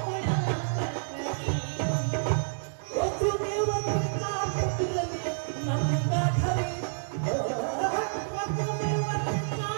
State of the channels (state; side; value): silent; left; digital silence